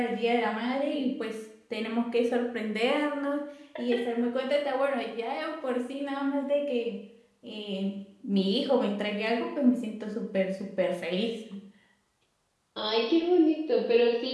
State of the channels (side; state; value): both; identical; correlation 1.00